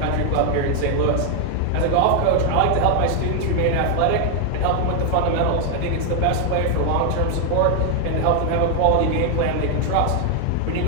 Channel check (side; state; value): both; different; correlation 0.00